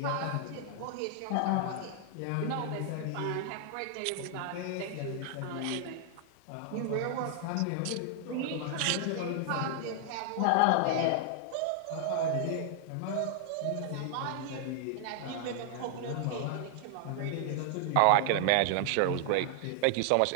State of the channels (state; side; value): different; both; correlation 0.00